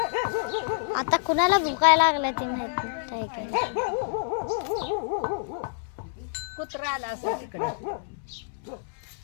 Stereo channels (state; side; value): silent; right; 60 dB below the other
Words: आता कुणाला भुकायला लागलाय ते माहित नाही टायगर कुत्रा आला असं तिकडे